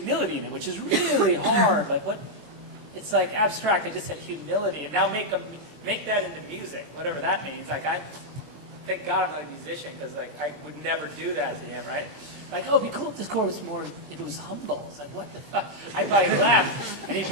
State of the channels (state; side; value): late; left; 20 ms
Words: in it, which is really hard. Like what? It's like abstract. I just said humility, and now make that into music, whatever that means. Like thank God I'm not a musician because like I would never do that to him, right? Like, oh, it'd be cool if this chord was more, if it was humble. It's like, what the fuck? I probably laughed, and he